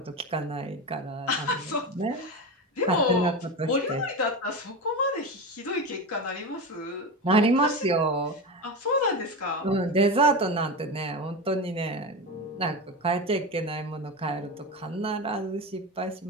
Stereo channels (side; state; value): both; normal; correlation 0.22